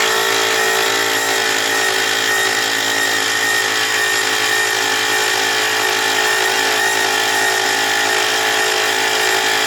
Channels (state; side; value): identical; both; correlation 1.00